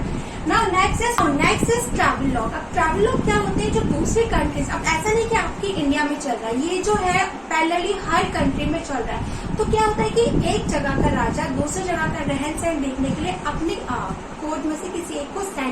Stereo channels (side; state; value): both; identical; correlation 1.00